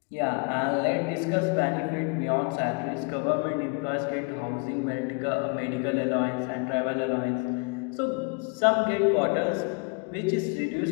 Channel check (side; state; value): right; quieter; 34.7 dB